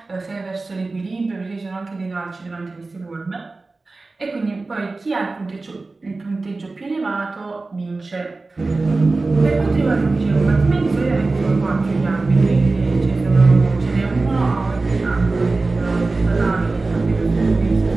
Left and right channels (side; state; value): left; quieter; 3.5 dB